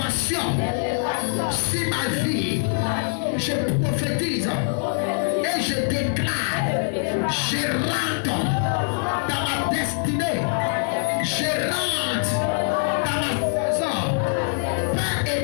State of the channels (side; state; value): right; silent; digital silence